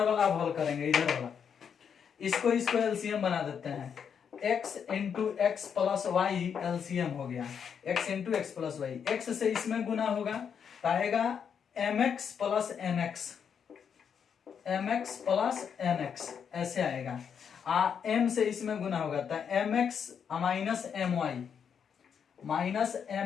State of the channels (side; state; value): right; quieter; 7.3 dB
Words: वाला अब हल करेंगे, इधर वाला इसको एलसीएम बना देते हैं। x into x plus y LCM हो गया, x into x plus y, x से इसमें गुना होगा तो आएगा mx plus nx, mx plus nx ऐसे आएगा। m से इसमें गुना होगा तो mx minus my, minus